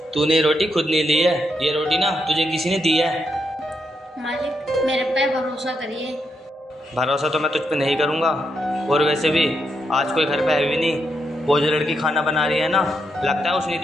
तूने ये रोटी खुद नहीं ली है, ये रोटी ना तुझे किसी ने दी है। मालिक मेरे पे भरोसा करिए। भरोसा तो मैं तुझ पे नहीं करूँगा। और वैसे भी आज कोई घर पे है भी नहीं। वो जो लड़की खाना बना रही है ना, लगता है उसने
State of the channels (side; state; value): both; normal; correlation 0.81